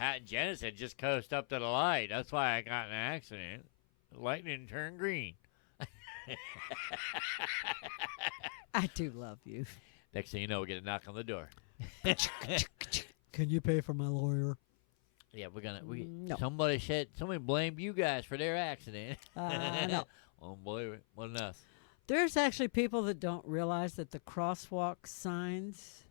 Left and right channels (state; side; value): silent; right; 51 dB below the other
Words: and Janice had just coast up to the light. That's why I got in an accident. The light didn't turn green. I do love you. Next thing you know, we get a knock on the door. Can you pay for my lawyer? Yeah, No. somebody blamed you guys for their accident. No. Won't believe it. Wasn't us. There's actually people that don't realize that the crosswalk signs